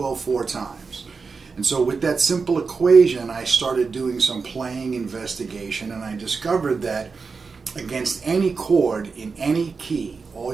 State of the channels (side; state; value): left; quieter; 4.8 dB